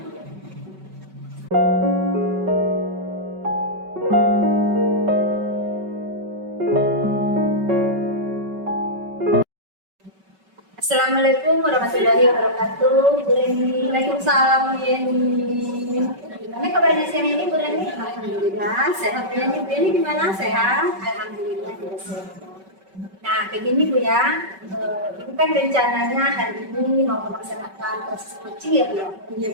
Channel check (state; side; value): late; left; 5.3 ms